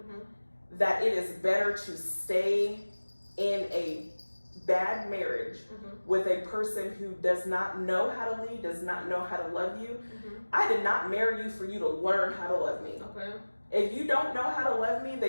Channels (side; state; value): both; inverted; correlation -1.00